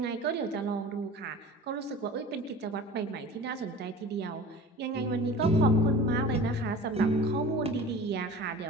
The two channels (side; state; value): both; normal; correlation 0.40